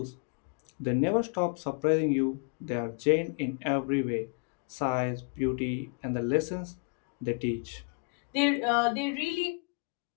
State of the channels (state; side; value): quieter; right; 35.9 dB